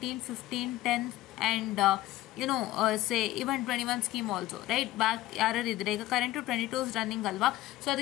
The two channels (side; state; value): right; quieter; 16.0 dB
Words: 15, 10 and say even 21 scheme also, right? Back ಯಾರು ಇದ್ರೆ ಈಗ current 22 running ಅಲ್ವಾ, so